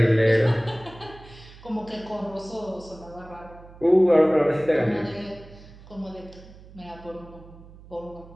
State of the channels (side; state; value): right; noise; hum, 20 dB below the sound